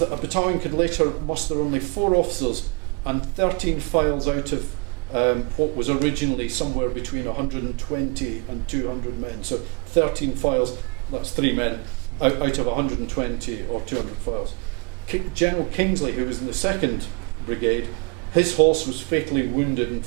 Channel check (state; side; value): quieter; left; 31.7 dB